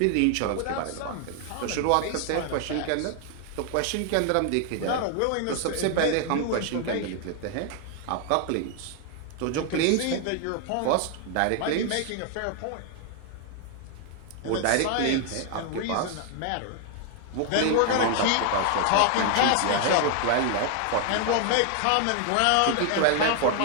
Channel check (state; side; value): different; both; correlation 0.00